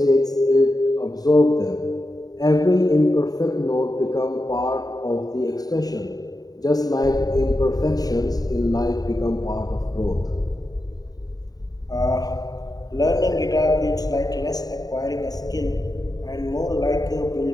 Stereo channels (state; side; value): late; right; 0.18 ms